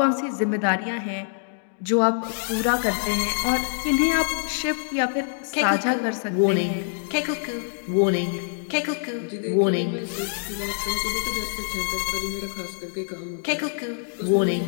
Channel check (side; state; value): right; silent; digital silence